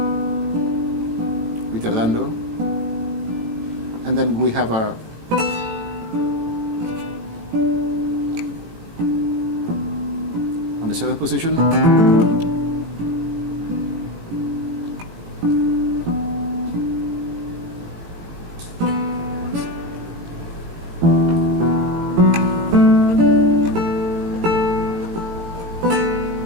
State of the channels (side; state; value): left; late; 18 ms